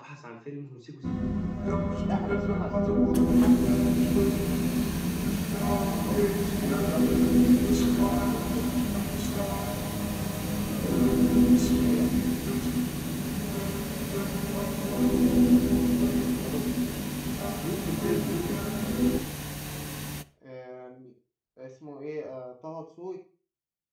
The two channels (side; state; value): both; identical; correlation 1.00